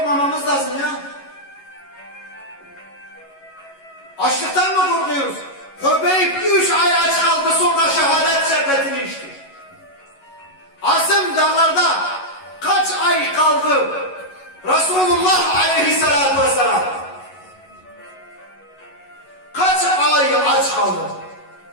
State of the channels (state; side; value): late; right; 11 ms